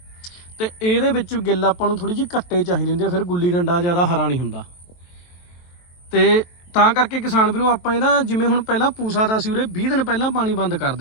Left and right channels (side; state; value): right; late; 23 ms